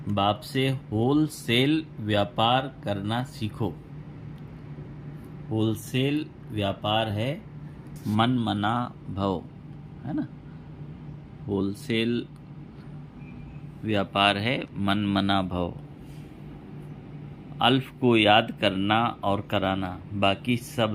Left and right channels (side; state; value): both; identical; correlation 1.00